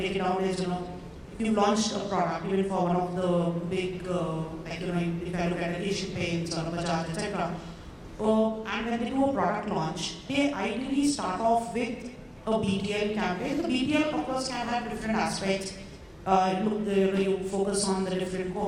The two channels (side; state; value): both; identical; correlation 1.00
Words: it down is, if you launched a product, even for one of the big, if I look at Asian Paints or Bajaj, etc. And when they do a product launch, they ideally start off with a BTL campaign. The BTL, of course, can have different aspects. You focus on the different